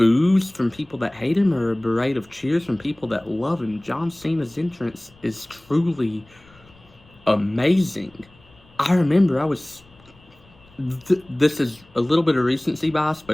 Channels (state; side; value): noise; left; rumble, 28 dB below the sound